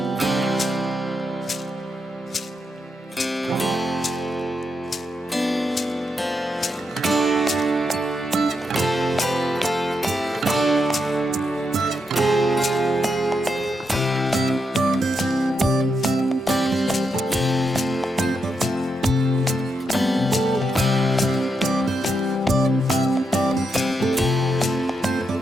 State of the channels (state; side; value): normal; both; correlation 0.83